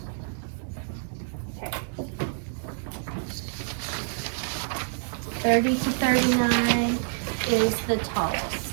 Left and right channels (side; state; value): left; silent; 60 dB below the other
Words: Okay. 30 to 39 is the tallest.